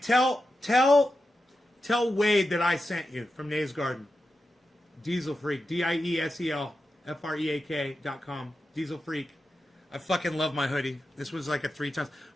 tell Wade that I sent you from Nay's Garden. Diesel Freak. DIESELFREAK.com. Diesel Freak. I fucking love my hoodie. This was like a 3 times.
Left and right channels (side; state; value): both; normal; correlation 0.90